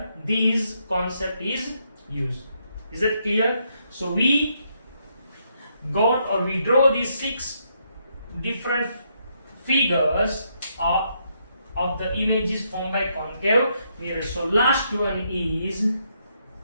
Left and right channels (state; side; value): inverted; both; correlation -0.76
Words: this concept is used. Is that clear? So we draw these 6 different figures of the images formed by concave mirror. So last one is